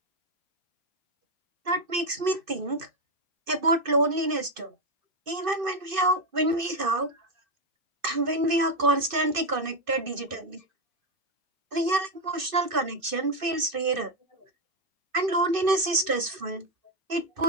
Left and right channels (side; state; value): left; late; 2.6 ms